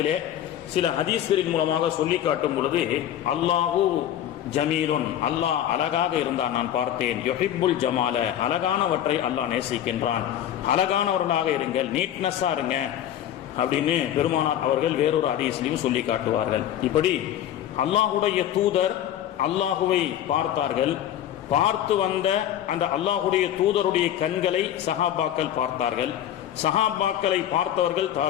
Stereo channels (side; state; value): right; quieter; 11.2 dB